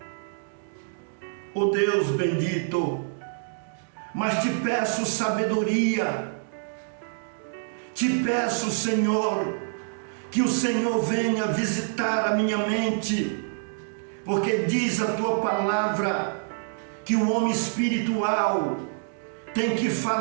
ó Deus bendito, mas te peço sabedoria, te peço, Senhor, que o Senhor venha visitar a minha mente, porque diz a tua palavra que o homem espiritual tem que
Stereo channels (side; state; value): left; silent; digital silence